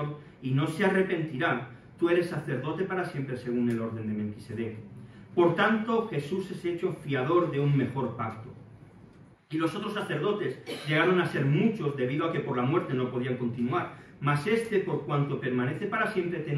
y no se arrepentirá, tú eres sacerdote para siempre según el orden de Melquisedec. Por tanto, Jesús es hecho fiador de un mejor pacto. Y los otros sacerdotes llegaron a ser muchos debido a que por la muerte no podían continuar, mas este, por cuanto permanece para siempre,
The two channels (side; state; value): both; identical; correlation 1.00